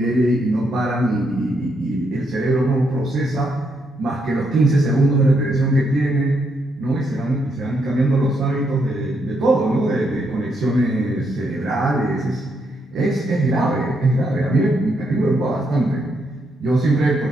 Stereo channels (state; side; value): normal; both; correlation 0.77